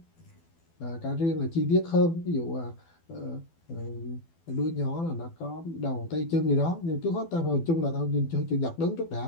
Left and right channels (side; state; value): right; late; 12 ms